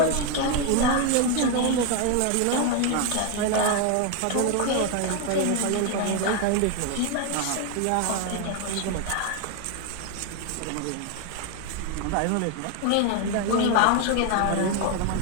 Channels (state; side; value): different; both; correlation 0.01